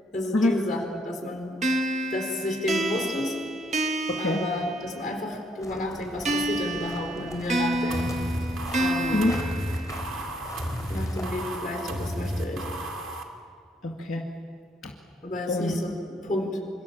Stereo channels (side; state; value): both; normal; correlation 0.71